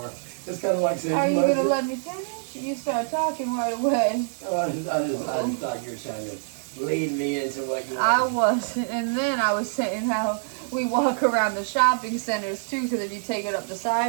It's kind of like saying, are you going to let me finish? You start talking right away. I just thought you were trying to lead me into what you I wanted. was, and then I was saying how we walk around the shopping centers too, because if you take it up the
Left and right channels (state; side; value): silent; left; 61 dB below the other